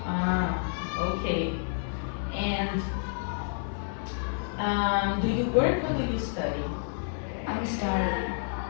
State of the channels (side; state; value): right; silent; 57 dB below the other